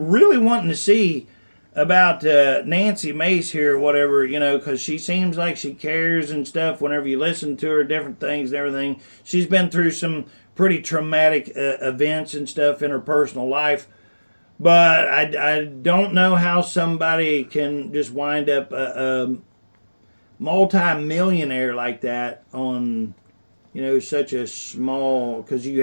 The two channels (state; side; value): inverted; both; correlation -1.00